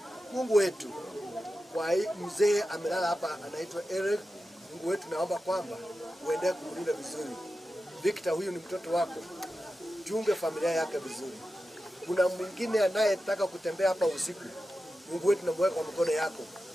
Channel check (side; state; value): both; normal; correlation 0.92